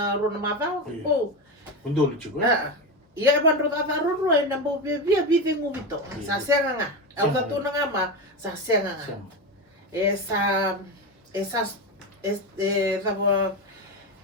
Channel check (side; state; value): both; normal; correlation 0.17